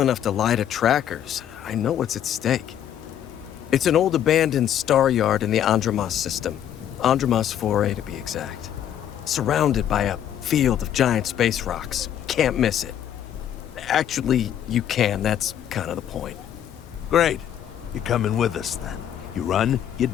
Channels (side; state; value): right; quieter; 10.2 dB